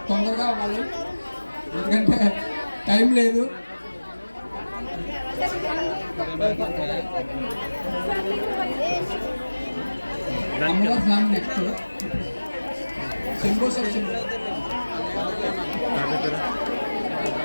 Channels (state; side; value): inverted; both; correlation -1.00